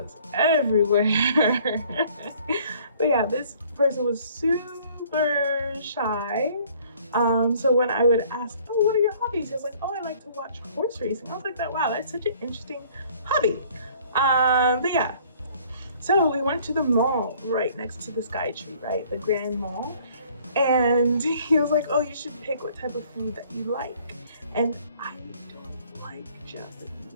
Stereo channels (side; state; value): both; inverted; correlation -0.57